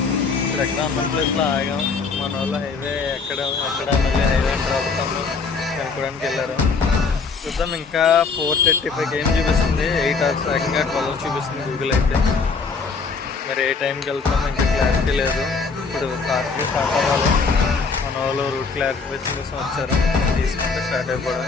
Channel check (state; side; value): quieter; right; 4.8 dB